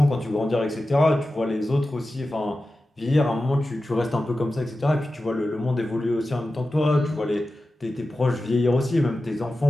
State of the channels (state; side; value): normal; both; correlation 0.93